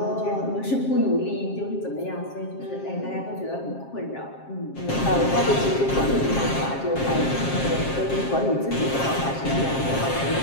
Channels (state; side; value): late; right; 7.5 ms